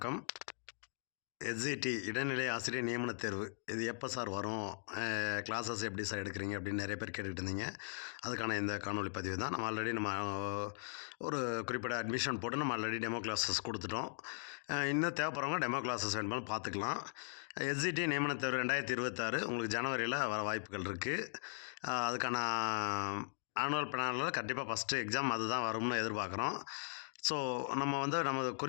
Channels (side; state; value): right; silent; digital silence